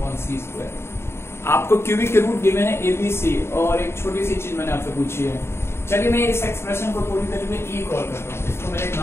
1/c square। आपको cubic के root given है a b c, और एक छोटी सी चीज मैंने आपसे पूछी है। चलिए मैं इस एक्सप्रेशन को पूरी तरीके से e कॉल करता हूँ, इसको मैंने एक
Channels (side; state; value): right; late; 0.12 ms